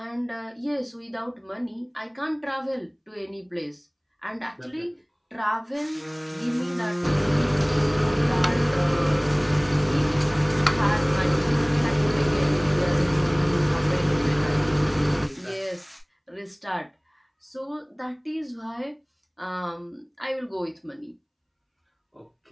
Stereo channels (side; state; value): both; identical; correlation 1.00